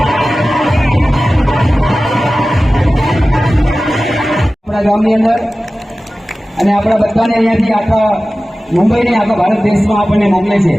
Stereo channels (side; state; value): both; normal; correlation 0.96